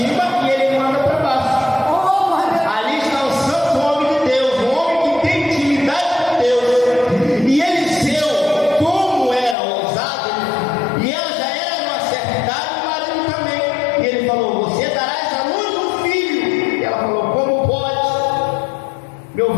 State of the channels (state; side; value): drops out; right; at 9.6 s